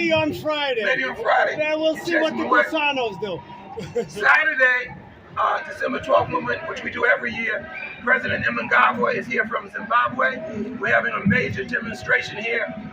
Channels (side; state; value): both; identical; correlation 1.00